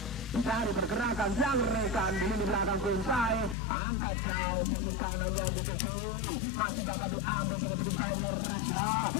mencari pergerakan yang rekan di lini belakang Prinsai, angkat jauh sisi kanan yang dituju, masih dapat diambil sangat cukup baik oleh Rasya,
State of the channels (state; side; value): drops out; right; at 3.6 s